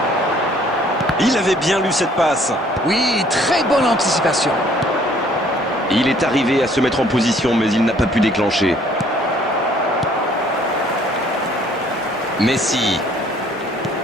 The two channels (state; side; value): normal; both; correlation 0.59